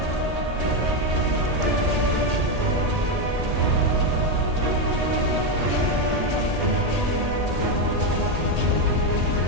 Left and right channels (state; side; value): late; left; 1.8 ms